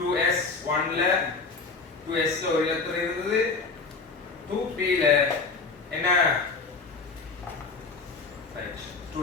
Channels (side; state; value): right; quieter; 4.3 dB